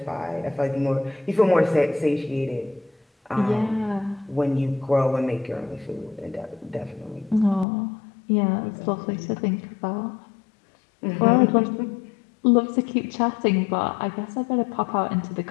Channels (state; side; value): drops out; right; at 7.7 s